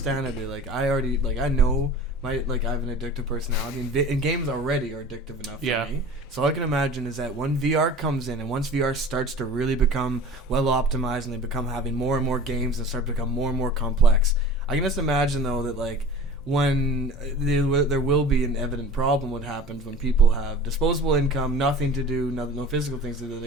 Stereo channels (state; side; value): normal; both; correlation 0.40